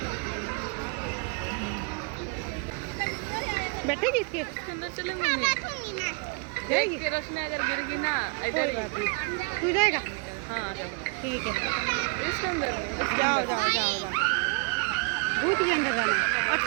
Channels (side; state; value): left; quieter; 35.4 dB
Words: बैठेगी इसके अंदर चले मम्मी, जाएगी? रश्मि अगर गिर गई ना कोई बात नहीं, तू जाएगा? हाँ ठीक है, इसके अंदर जाओ जाओ जाओ। भूत के अंदर जाना,